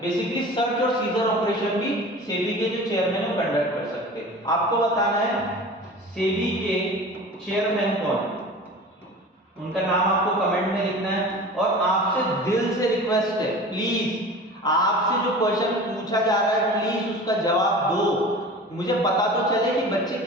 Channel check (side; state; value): both; normal; correlation 0.38